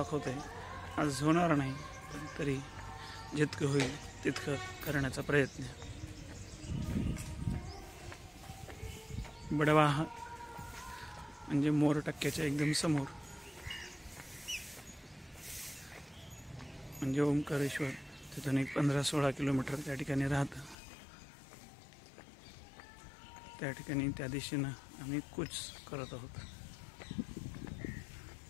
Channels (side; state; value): right; drops out; at 20.8 s